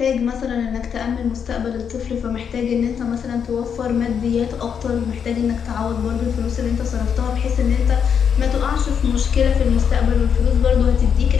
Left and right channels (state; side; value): quieter; right; 7.4 dB